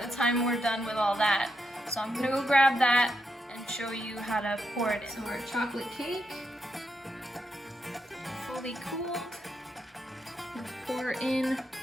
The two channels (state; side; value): normal; both; correlation 0.82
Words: time we're done with all that. So I'm gonna go grab that and show you how to pour it in. So our chocolate cake, fully cooled. And pour in